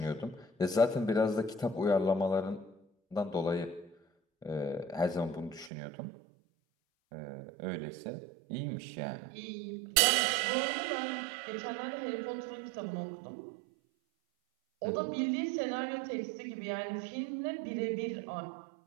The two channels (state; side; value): drops out; left; at 5.7 s